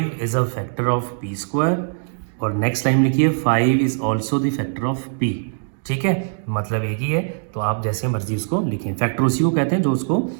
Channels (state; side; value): silent; left; digital silence